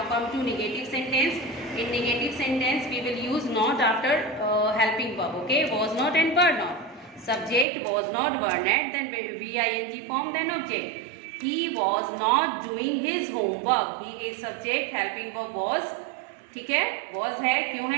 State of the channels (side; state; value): left; drops out; at 7.7 s